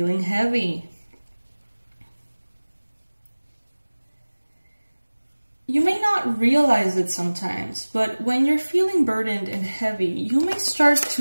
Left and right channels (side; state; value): both; inverted; correlation -1.00